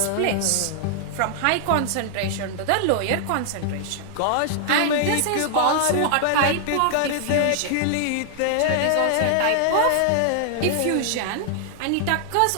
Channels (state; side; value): different; both; correlation 0.00